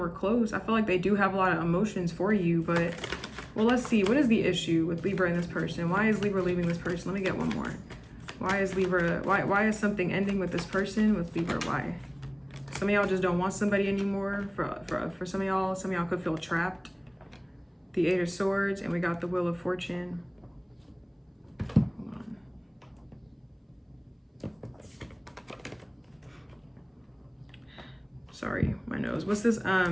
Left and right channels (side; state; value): both; identical; correlation 1.00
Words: close. I feel like they do have a lot of emotions for you, but, well, let's see. What is the issue with Libra and this person? Why is Libra leaving this person? Let me get one more. Why is Libra, why is something ending with this person with Libra? Why? Some of y'all just don't want somebody anymore. For some of y'all could feel trapped. The Eight of Swords, and we got the Wheel of Fortune. Hold on. Sorry, my nose. What's this?